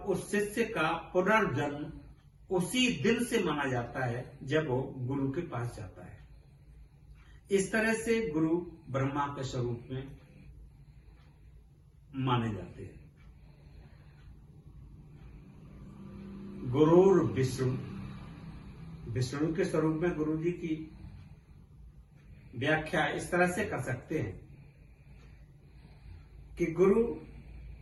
शिष्य का पुनर्जन्म उसी दिन से माना जाता है जब वो गुरु के पास जाता है। इस तरह से गुरु ब्रह्मा के स्वरूप में माने जाते हैं। गुरुर विष्णु, विष्णु के स्वरूप में गुरु जी की व्याख्या इस तरह से कर सकते हैं कि गुरु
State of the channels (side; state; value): both; identical; correlation 1.00